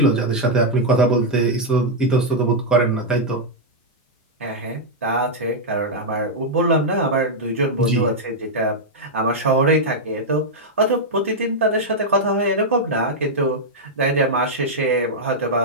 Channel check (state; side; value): normal; both; correlation -0.03